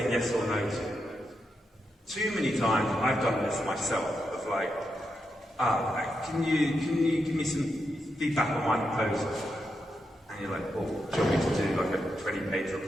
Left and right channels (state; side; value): normal; both; correlation 0.84